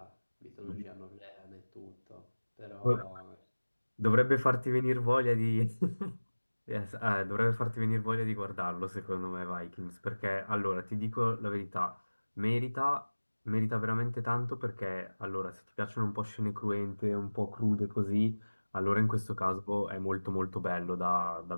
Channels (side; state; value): both; inverted; correlation -1.00